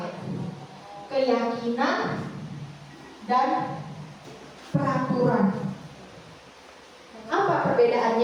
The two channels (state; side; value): identical; both; correlation 1.00